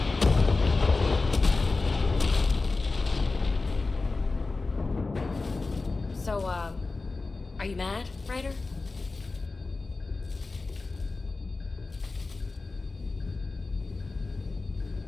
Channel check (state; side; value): quieter; right; 3.7 dB